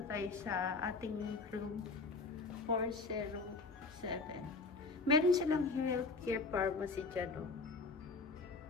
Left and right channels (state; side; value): quieter; right; 3.9 dB